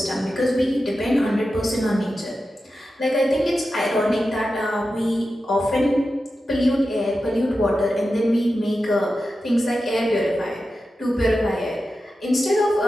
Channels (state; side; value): normal; both; correlation 0.91